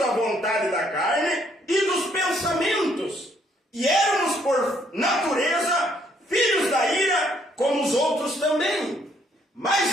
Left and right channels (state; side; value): normal; both; correlation 0.68